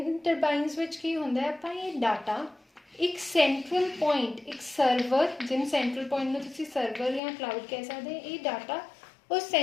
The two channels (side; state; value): right; drops out; at 7.2 s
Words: ਟਰਬਾਈਨਸ ਵਿੱਚ ਕੀ ਹੁੰਦਾ ਹੈ, ਆਪਾਂ ਇਹ ਡਾਟਾ ਇੱਕ ਸੈਂਟਰਲ ਪੁਆਇੰਟ, ਇੱਕ ਸਰਵਰ, ਜਿਹਨੂੰ ਸੈਂਟਰਲ ਪੁਆਇੰਟ ਨੂੰ ਤੁਸੀਂ ਸਰਵਰ ਜਾਂ ਕਲਾਊਡ ਕਹਿ ਸਕਦੇ, ਇਹ ਡਾਟਾ ਉਸ